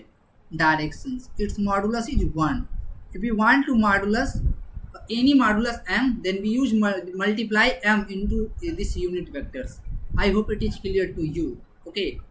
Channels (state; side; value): identical; both; correlation 1.00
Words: directions. Its modulus is 1. If we want to modulus any modulus m, then we use multiply m into this unit vectors. I hope it is clear to you. Okay,